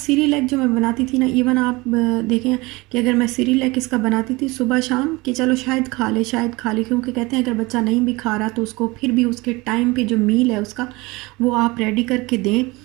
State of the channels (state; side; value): quieter; left; 23.1 dB